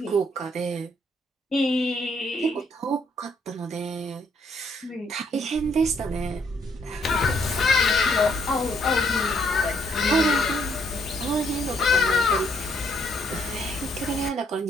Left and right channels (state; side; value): normal; both; correlation 0.70